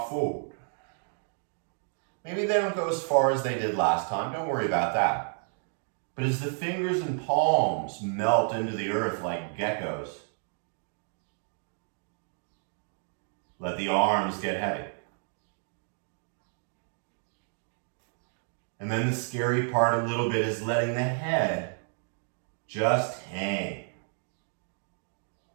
forward. Maybe they don't go as far as they did last time. Don't worry about that. But as the fingers and palms melt into the earth like geckos, let the arms get heavy. And then the scary part a little bit is letting the head just hang.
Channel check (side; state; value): left; silent; 55 dB below the other